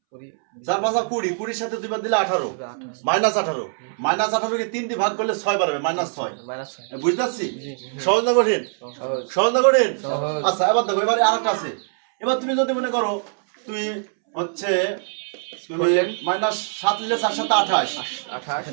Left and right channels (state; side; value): silent; left; 64 dB below the other